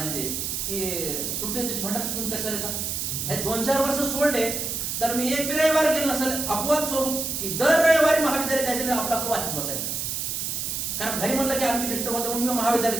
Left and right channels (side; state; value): right; noise; hiss, 2 dB below the sound